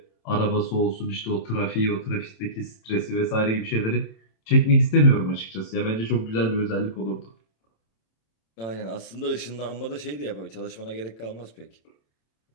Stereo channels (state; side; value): late; right; 27 ms